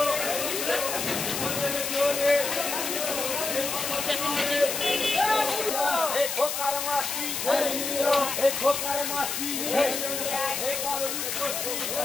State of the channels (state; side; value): noise; left; hiss, 2 dB below the sound